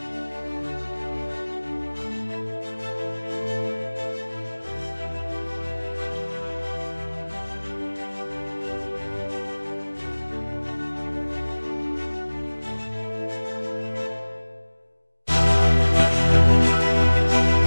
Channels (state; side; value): inverted; both; correlation -1.00